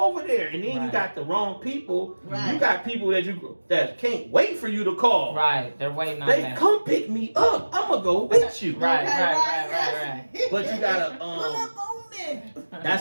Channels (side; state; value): both; inverted; correlation -1.00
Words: over there. And then you got the wrong people. Right. You got people that can't wait for you to call. Right. They're waiting on They that. come pick me up. I'm gonna go with you. Right. Okay, Right. But you gotta Pull up on me.